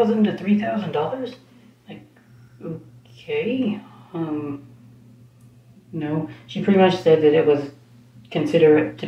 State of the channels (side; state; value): both; identical; correlation 1.00